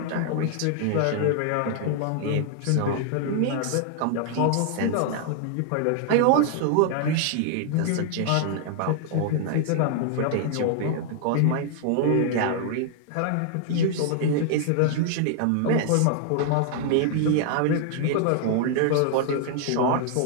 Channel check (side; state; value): both; different; correlation 0.00